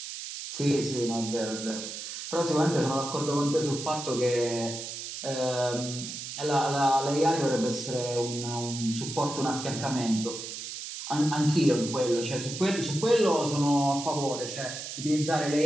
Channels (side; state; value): right; noise; hiss, 8 dB below the sound